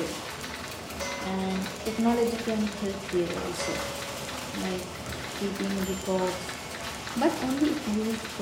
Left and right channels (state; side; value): identical; both; correlation 1.00